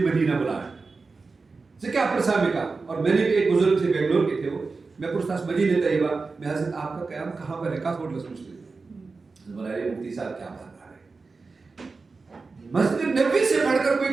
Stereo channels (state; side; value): quieter; left; 4.2 dB